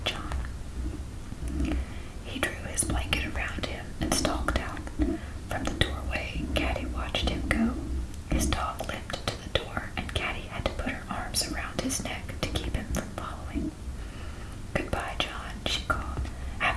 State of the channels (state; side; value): identical; both; correlation 1.00